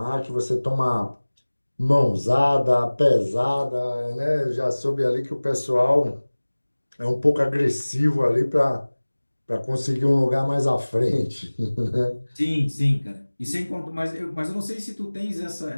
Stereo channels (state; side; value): inverted; both; correlation -1.00